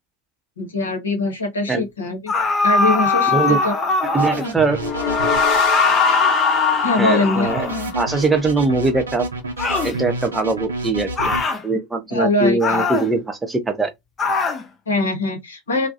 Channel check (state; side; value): normal; both; correlation 0.33